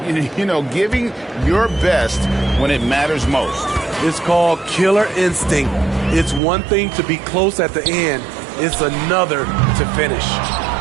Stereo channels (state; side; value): drops out; left; at 6.4 s